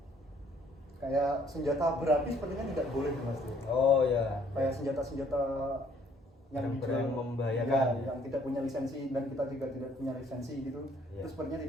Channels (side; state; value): both; normal; correlation 0.62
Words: kayak senjata berapi sepertinya tidak boleh, Mas Dery. Oh ya. Kayak senjata yang Barang-barang dijual, membahayakan ya, yang tidak punya lisensi dan kita juga tidak punya lisensi gitu, Ya. itu sepertinya